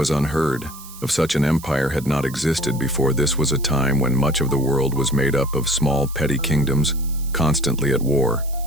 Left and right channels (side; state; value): right; noise; hiss, 17 dB below the sound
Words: unheard of. Such an empire had not existed before. This was a time when much of the world was made up of small, petty kingdoms, constantly at war.